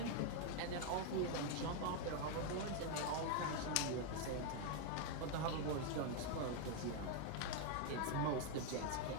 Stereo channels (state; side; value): different; both; correlation 0.00